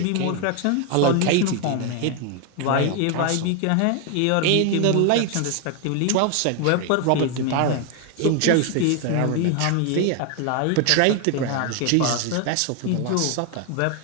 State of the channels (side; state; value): both; different; correlation 0.01